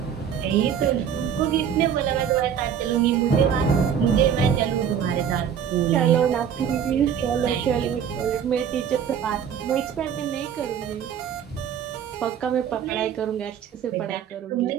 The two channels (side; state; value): left; quieter; 8.3 dB